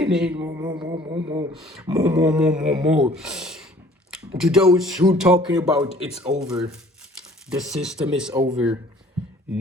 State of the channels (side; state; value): both; normal; correlation 0.54